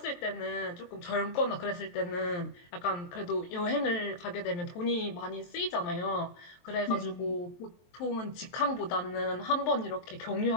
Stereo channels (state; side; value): late; right; 23 ms